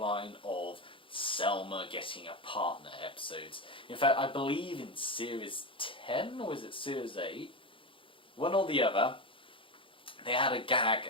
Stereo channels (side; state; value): right; late; 0.25 ms